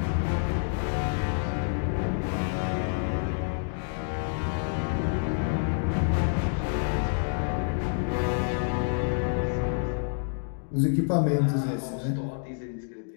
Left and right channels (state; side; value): silent; right; digital silence